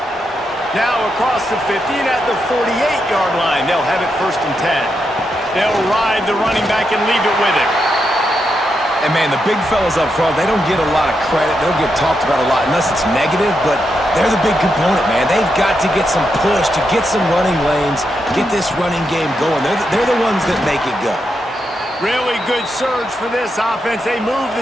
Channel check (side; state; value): both; normal; correlation 0.84